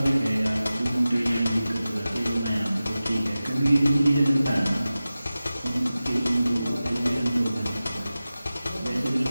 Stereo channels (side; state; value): both; inverted; correlation -0.95